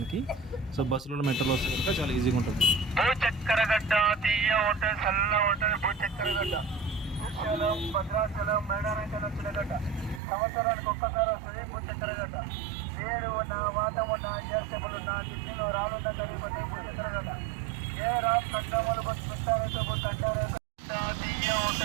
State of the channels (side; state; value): left; drops out; at 10.2 s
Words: సో బస్సులలో, మెట్రోలో వస్తే కనుక చాలా ఈజీగా ఉంటుంది. భూచక్రగడ్డ తీయ హోటల్, సల్ల హోటల్, భూచక్రగడ్డ, శ్రీశైలం, భద్రాచలం, మేడారంకల్ వచ్చిన గడ్డ. సంవత్సరానికి ఒక్కసారి వస్తుంది భూచక్రగడ్డ. వేరు ఉన్న, వాతం ఉన్న, గ్యాస్టేబుల్ ఉన్న, ఢిల్లీలో రానున్న గడిపోతే భూచక్రగడ్డ. ఏ రామ్ కండములు బస్ పెట్టారైతే బస్ అంటారైతే తీయ